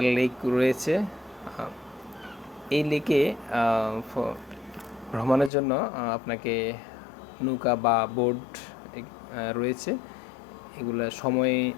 লেক রয়েছে। এই লেকে ভ্রমণের জন্য আপনাকে নৌকা বা বোট রয়েছে, এগুলো সময়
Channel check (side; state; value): right; drops out; at 5.5 s